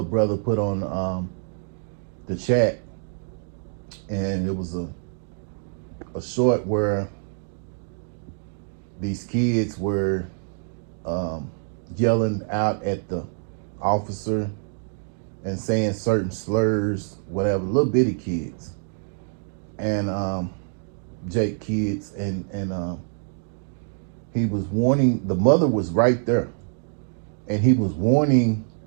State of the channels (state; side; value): silent; left; digital silence